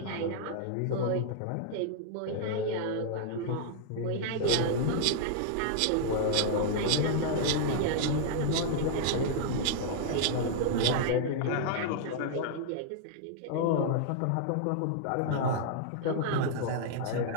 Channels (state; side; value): different; both; correlation -0.01